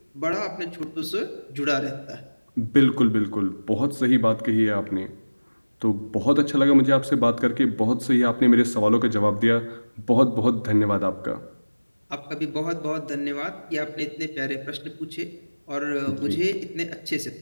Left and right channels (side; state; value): both; inverted; correlation -1.00